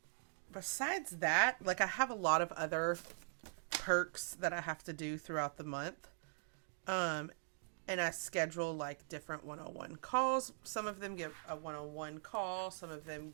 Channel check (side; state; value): left; silent; digital silence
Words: besides that, like I have a lot of other perks that I have to do throughout the month. And I schedule like different one-on-one calls. Some of them get a one-on-one call. Some of them